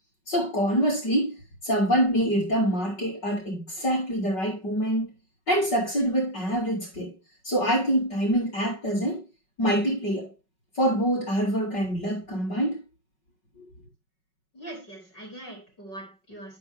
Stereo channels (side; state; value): right; late; 5.4 ms